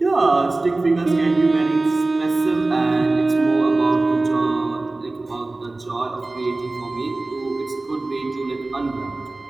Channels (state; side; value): quieter; left; 3.1 dB